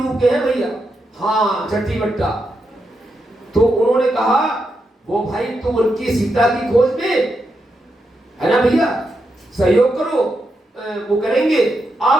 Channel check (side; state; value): both; normal; correlation 0.84